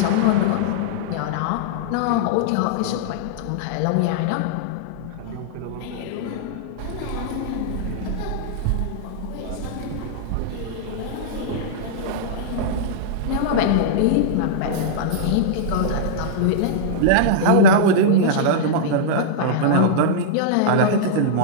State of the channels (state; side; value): different; both; correlation -0.02